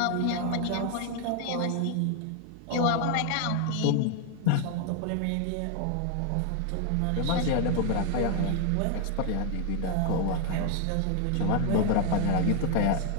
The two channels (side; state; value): both; different; correlation 0.00